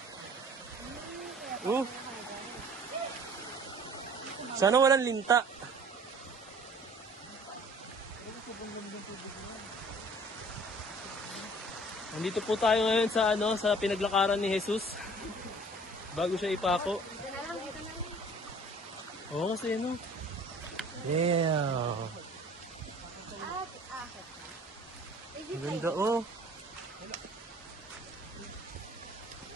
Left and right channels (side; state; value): both; normal; correlation 0.51